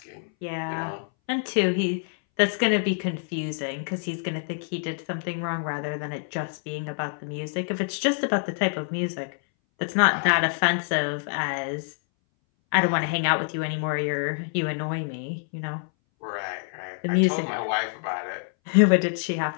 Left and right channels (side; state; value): right; silent; 60 dB below the other